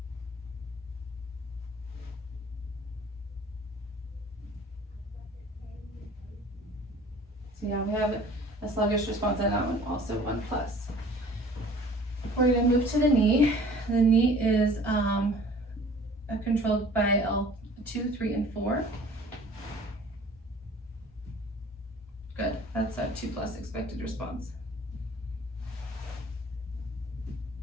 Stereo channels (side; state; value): both; normal; correlation 0.49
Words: So yeah, we have a sluggish response on that one, also 1 plus. We're going to move to the knee. The knee is controlled by L2, 3, and 4. Good, that's a 2+ expected response.